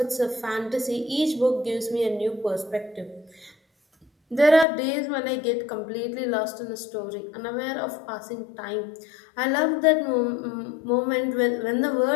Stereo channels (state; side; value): drops out; right; at 4.7 s